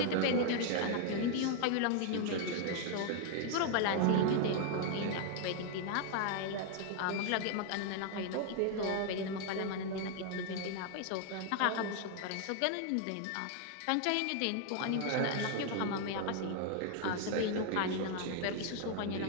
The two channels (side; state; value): both; different; correlation 0.00